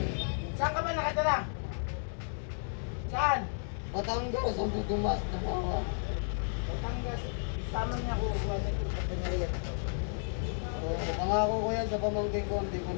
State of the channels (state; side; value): silent; right; digital silence